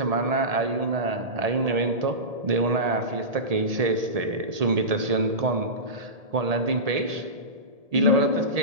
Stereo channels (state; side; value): late; left; 1.7 ms